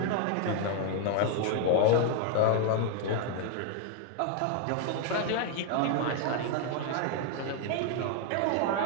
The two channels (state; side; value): different; both; correlation 0.00